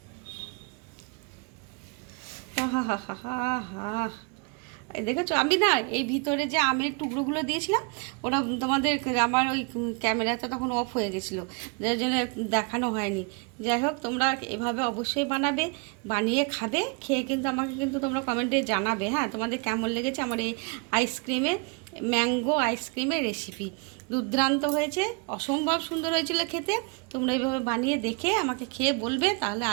হা হা হা হা হা। দেখেছো, আমি না এই ভিতরে যে আমের টুকরোগুলো দিয়েছিলাম, ওটা তোমাদের আমার ওই ক্যামেরাটা তখন অফ হয়ে গেছিলো, যার জন্য দেখানো হয়নি। যাই হোক, তোমরা এভাবে অবশ্যই বানাবে, বানিয়ে খাবে, খেয়ে কিন্তু আমাকে কিন্তু তোমরা কমেন্টে জানাবে। হ্যাঁ, তোমাদের কেমন লেগেছে আমার এই ম্যাঙ্গো আইসক্রিমের রেসিপি। দুর্দান্ত হয়েছে, অসম্ভব সুন্দর হয়েছিল খেতে। তোমরা এইভাবে বানিয়ে দেখে আমাকে খেয়ে বলবে। তাহলে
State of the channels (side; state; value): left; quieter; 32.7 dB